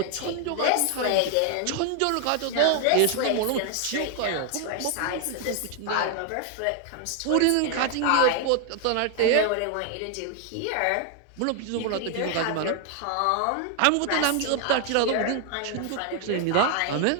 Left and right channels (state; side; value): different; both; correlation 0.00